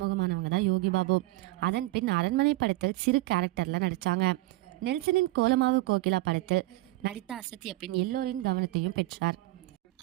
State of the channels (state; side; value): quieter; left; 19.3 dB